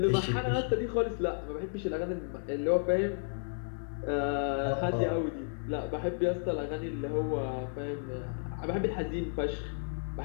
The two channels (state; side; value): silent; right; digital silence